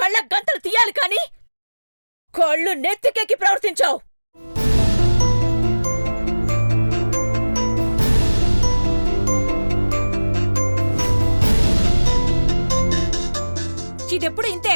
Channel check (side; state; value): both; inverted; correlation -1.00